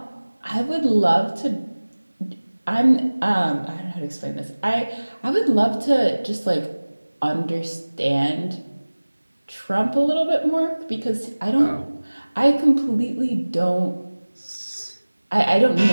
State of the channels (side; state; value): both; inverted; correlation -1.00